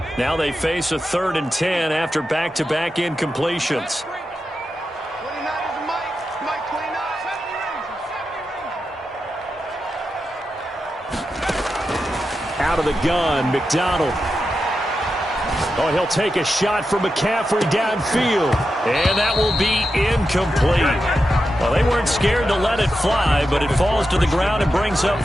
Now they face a 3rd and 10 after back-to-back incompletions. Out of the gun, McDonald. Oh, he'll take a shot from McCaffrey downfield. And that will be incomplete. Well, they weren't scared to let it fly, but it falls to the ground and brings up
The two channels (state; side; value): normal; both; correlation 0.89